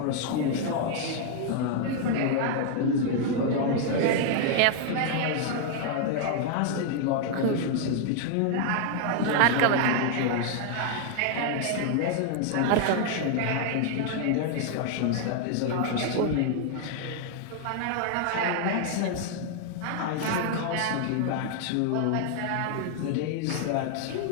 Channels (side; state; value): both; different; correlation 0.00